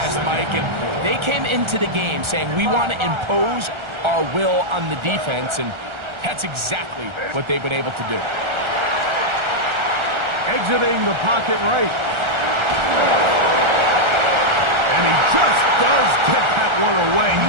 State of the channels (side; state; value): left; late; 1.3 ms